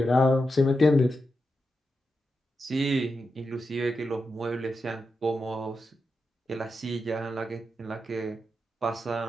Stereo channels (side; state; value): both; normal; correlation 0.87